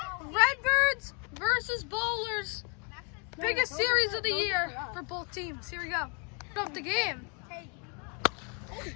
Redbirds versus Bowlers. Biggest series of the year for both teams. Here we go. Put up the game.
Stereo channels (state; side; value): quieter; right; 36.3 dB